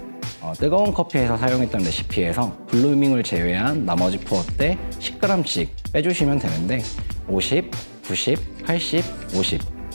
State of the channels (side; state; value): both; inverted; correlation -1.00